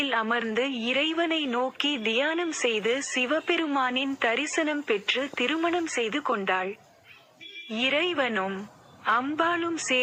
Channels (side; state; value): both; identical; correlation 1.00